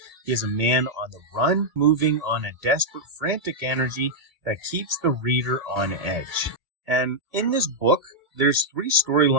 He is a man on the run, moving on a desperate, frantic energy that keeps the reader on edge. And in this book, there's 3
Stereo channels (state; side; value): late; left; 2.2 ms